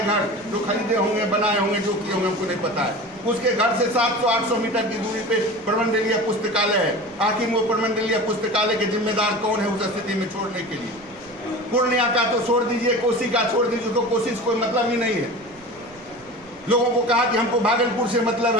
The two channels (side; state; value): right; noise; rumble, 28 dB below the sound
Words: घर, जो खरीदे होंगे, बनाए होंगे, जो किए होंगे, हमको नहीं पता है। उसके घर से 700-800 मीटर की दूरी पे प्रमंडलीय पुस्तकालय है। आखिर वो प्रमंडलीय पुस्तकालय के जिम्मेदार कौन है उस स्थिति में छोड़ने के लिए? पूर्णिया का तो छोड़ दीजिए, कोसी का छोड़ दीजिए, तो कोसी से कोई मतलब ही नहीं है। लोगों को कहा कि हमको भागलपुर से मतलब,